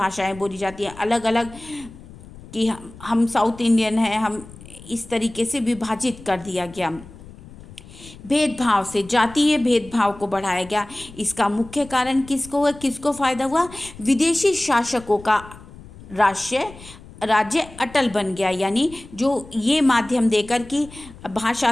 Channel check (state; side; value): noise; left; rumble, 19 dB below the sound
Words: बोली जाती हैं, अलग अलग कि हम साउथ इंडियन हैं, हम इस तरीके से विभाजित कर दिया गया। भेदभाव से, जातीय भेदभाव को बढ़ाया गया। इसका मुख्य कारण किसको फ़ायदा हुआ? विदेशी शासकों का राज्य अटल बन गया। यानी जो ये माध्यम देकर कि